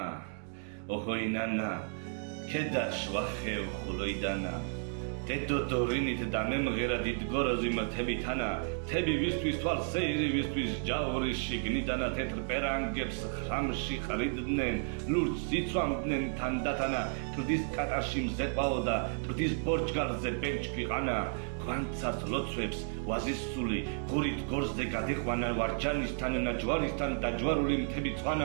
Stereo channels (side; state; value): left; silent; 56 dB below the other